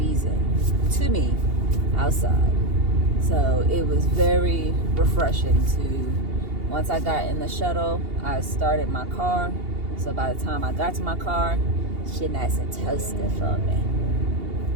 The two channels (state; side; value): late; left; 2.8 ms